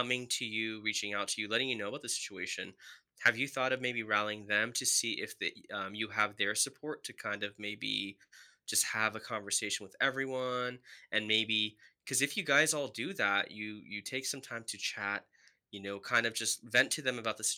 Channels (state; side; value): identical; both; correlation 1.00